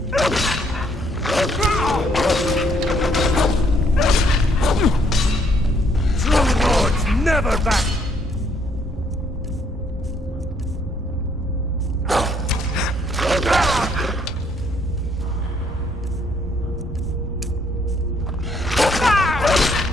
True lords never back!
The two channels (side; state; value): both; normal; correlation 0.68